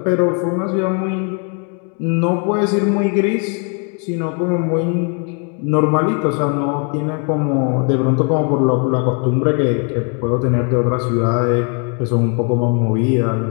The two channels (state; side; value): quieter; right; 37.4 dB